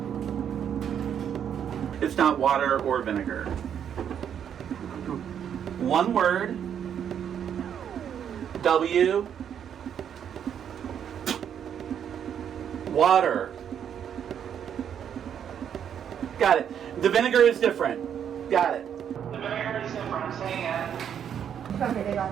It's not water or vinegar. One word. W. Water. Got it. The vinegar is different. Got it. Okay, they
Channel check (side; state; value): left; quieter; 8.7 dB